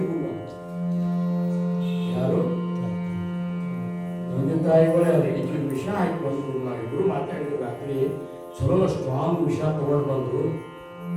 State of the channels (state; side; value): identical; both; correlation 1.00